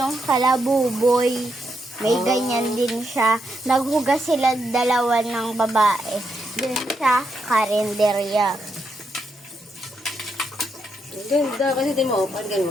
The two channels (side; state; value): both; normal; correlation 0.81